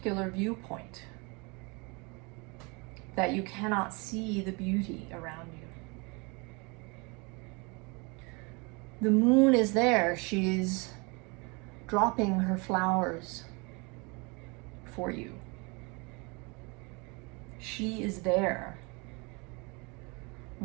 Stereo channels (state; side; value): quieter; left; 29.5 dB